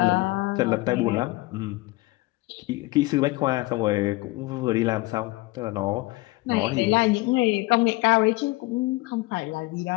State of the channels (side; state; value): right; quieter; 21.5 dB